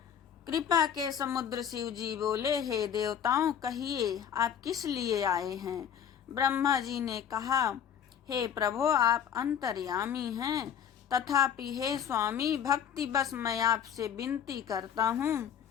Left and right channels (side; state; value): right; quieter; 8.7 dB